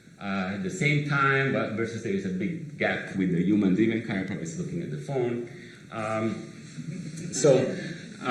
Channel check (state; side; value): identical; both; correlation 1.00